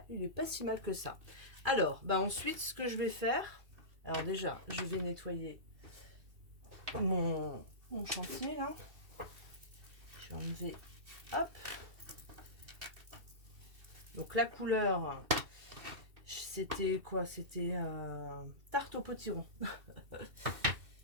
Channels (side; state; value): left; late; 2.7 ms